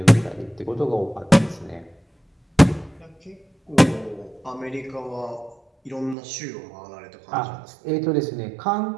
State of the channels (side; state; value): left; drops out; at 6.2 s